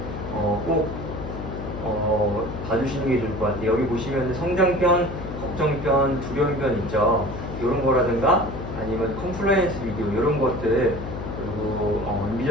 꼭 봐주시는 게 좋을 것 같아요. 여기 보시면 성장편, 걱정편, 두려움편 있죠. 이런 거라든가 아니면 컴플라이언스 비디오 이런 것들 그리고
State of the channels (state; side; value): noise; left; hum, 8 dB below the sound